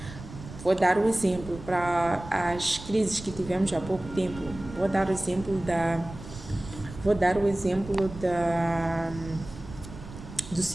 Vou dar o exemplo para as crises que tivemos há pouco tempo. Vou dar o exemplo do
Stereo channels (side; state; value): right; noise; rumble, 14 dB below the sound